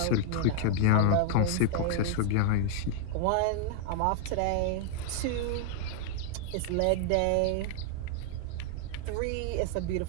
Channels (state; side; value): different; both; correlation 0.00